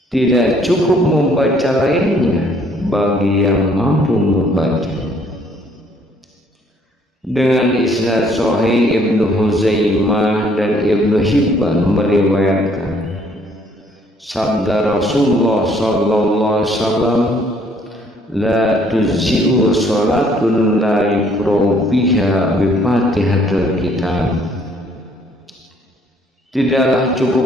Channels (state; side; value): normal; both; correlation 0.63